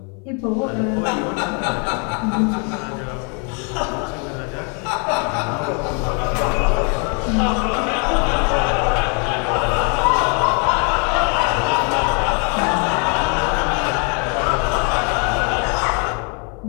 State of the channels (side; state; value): right; quieter; 37.2 dB